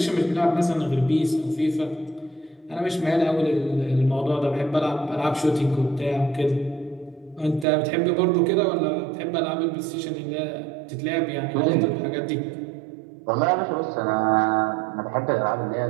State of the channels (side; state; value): left; drops out; at 7.7 s